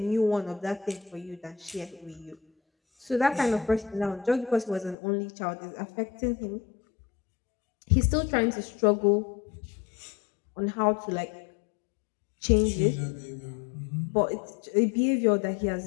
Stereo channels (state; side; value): drops out; right; at 5.0 s